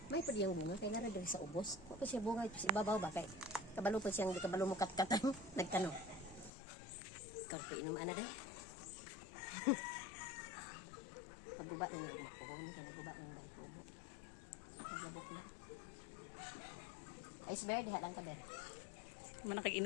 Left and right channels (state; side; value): drops out; right; at 6.5 s